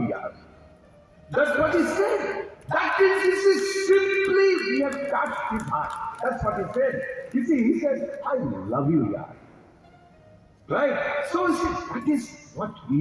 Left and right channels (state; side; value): identical; both; correlation 1.00